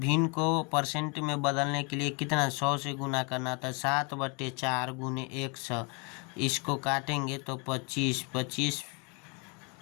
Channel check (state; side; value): quieter; right; 32.6 dB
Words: को परसेंट में बदलने के लिए कितना 100 से गुना करना था। 7/4 गुने 100, इसको काटेंगे तो 25, 25